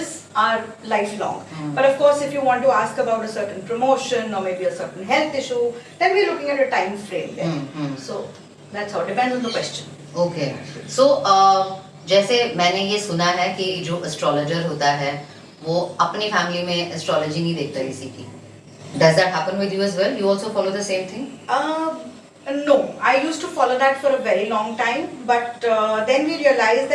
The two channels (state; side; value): identical; both; correlation 1.00